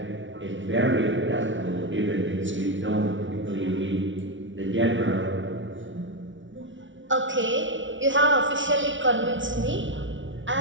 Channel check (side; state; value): left; late; 0.56 ms